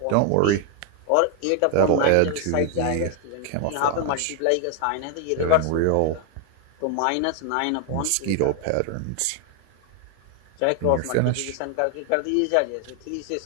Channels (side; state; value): both; different; correlation 0.00